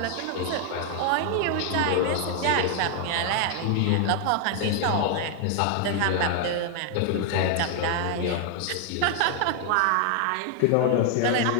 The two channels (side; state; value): both; different; correlation 0.00